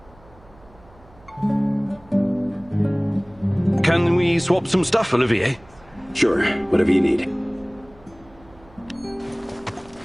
Can we swap some stuff, Olivier? Sure, whatever you need.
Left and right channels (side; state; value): right; noise; hum, 26 dB below the sound